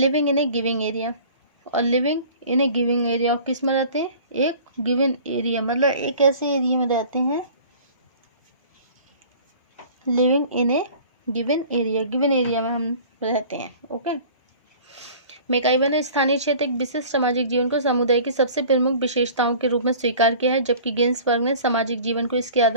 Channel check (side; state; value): both; inverted; correlation -0.45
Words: in a giving area. और living in a giving area, और किस में रहते हैं? एक गिवन एरिया, मतलब एक ऐसे एरिया में रहते हैं. Living in a given area में हम रहते हैं. ओके. मैकाइवर ने स्थानीय क्षेत्र एक विशिष्ट सामाजिक जीवन को समुदाय की सबसे प्रमुख विशेषताओं के रूप में स्वीकार किया है, जबकि गिन्सबर्ग ने सामाजिक जीवन को इसकी